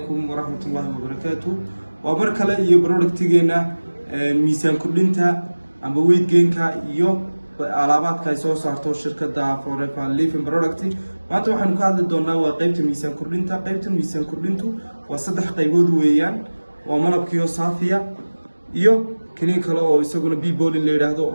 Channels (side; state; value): both; inverted; correlation -1.00